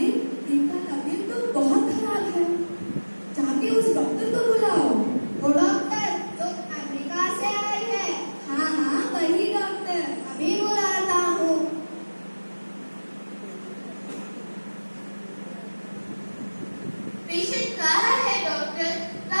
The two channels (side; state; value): both; inverted; correlation -1.00